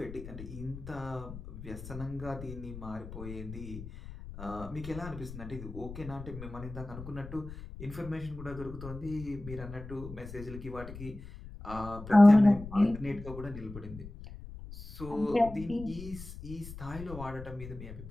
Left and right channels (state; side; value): noise; left; rumble, 12 dB below the sound